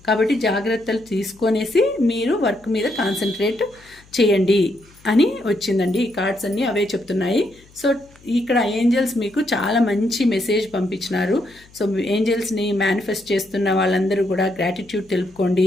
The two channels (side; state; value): left; noise; hum, 27 dB below the sound